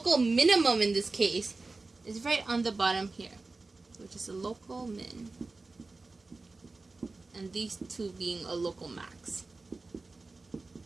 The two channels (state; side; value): quieter; left; 3.6 dB